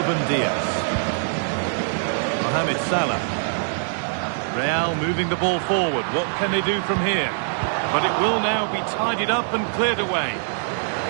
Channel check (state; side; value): silent; left; digital silence